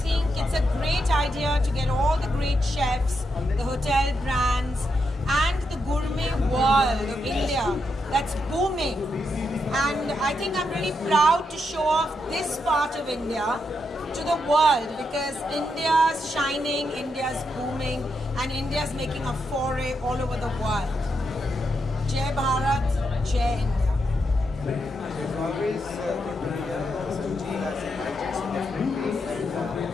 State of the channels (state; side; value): normal; both; correlation 0.83